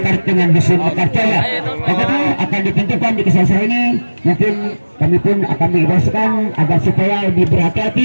dengan Dusun Mekarjaya. Karena akan ditentukan di kesalahan ini, mungkin kami pun akan mengimbaukan agar supaya lebih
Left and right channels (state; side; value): inverted; both; correlation -1.00